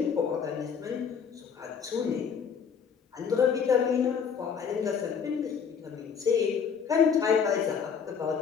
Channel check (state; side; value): quieter; right; 6.7 dB